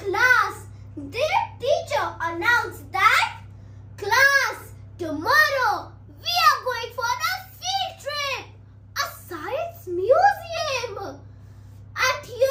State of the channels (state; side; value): identical; both; correlation 1.00